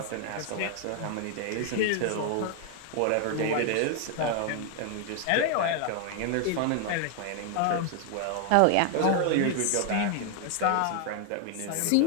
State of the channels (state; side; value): different; both; correlation 0.00